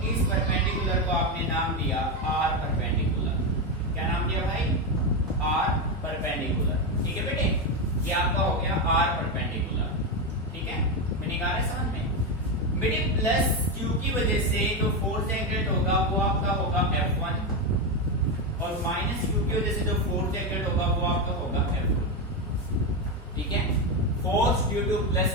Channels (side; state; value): both; normal; correlation 0.11